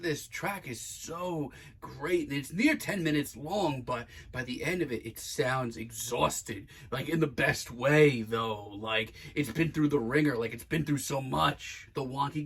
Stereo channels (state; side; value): identical; both; correlation 1.00